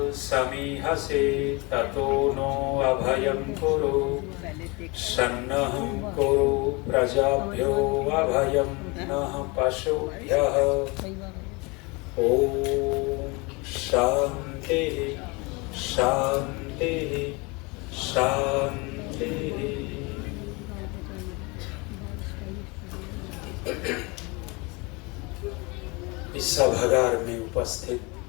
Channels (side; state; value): right; quieter; 27.3 dB